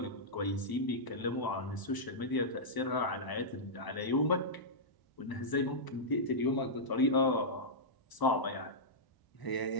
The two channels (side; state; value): right; late; 1.0 ms